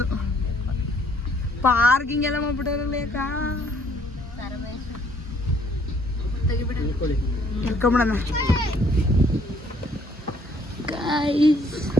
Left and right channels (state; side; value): normal; both; correlation 0.63